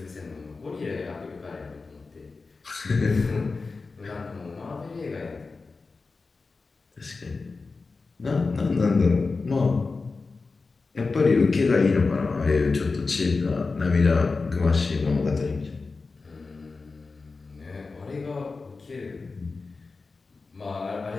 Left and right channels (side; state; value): right; quieter; 4.1 dB